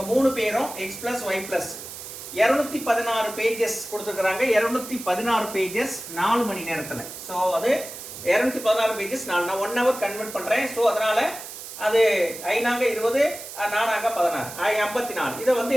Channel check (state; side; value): noise; right; hiss, 11 dB below the sound